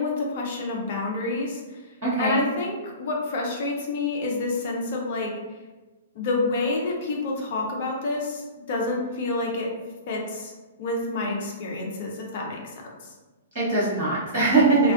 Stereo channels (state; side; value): inverted; both; correlation -0.32